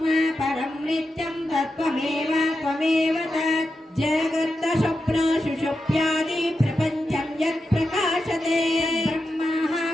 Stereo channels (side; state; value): both; normal; correlation 0.88